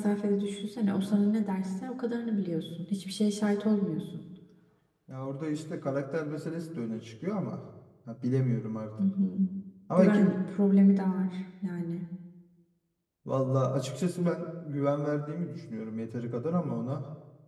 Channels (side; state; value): both; identical; correlation 1.00